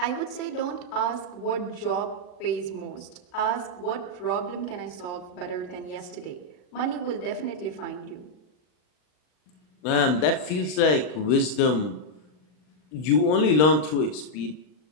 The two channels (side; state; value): right; late; 39 ms